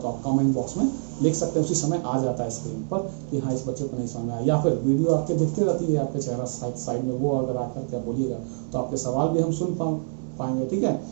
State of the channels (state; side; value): silent; left; digital silence